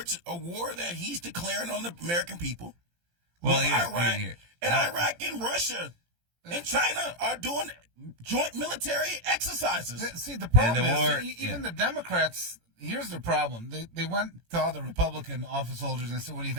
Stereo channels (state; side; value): late; left; 18 ms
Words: a war that he's declaring on the American people. Well, Iraq and Russia and China are doing joint military exercises. See, the problem is, even the Democrats, here's the problem. They went to all the Republican office holders and said, what do you